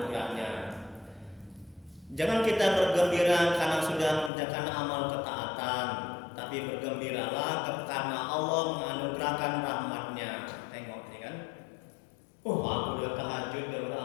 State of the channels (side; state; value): right; drops out; at 4.3 s